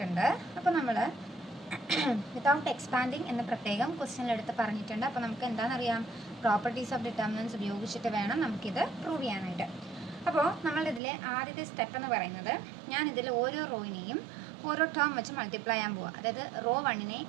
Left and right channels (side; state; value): left; drops out; at 11.0 s